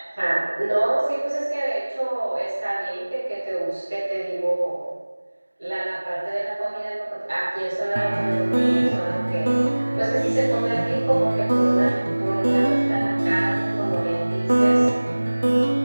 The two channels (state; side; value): inverted; both; correlation -1.00